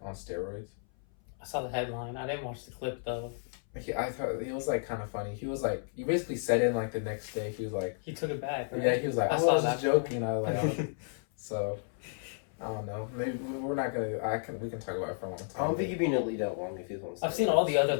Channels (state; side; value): silent; right; 56 dB below the other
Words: on steroids? I saw the headline. I didn't watch the clip though. I thought he was like kind of funny. He was like, he basically said it like the next day. He was like, he took it back. Right? Yeah, he was like, I was just joking. I was like, so I don't know. Maybe we're not gonna. We can talk about it for a long time. I don't think he'd be in the league that long if he was on. I've seen all the other